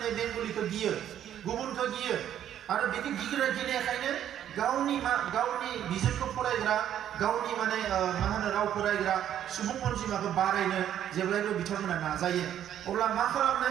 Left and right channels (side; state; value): left; quieter; 10.6 dB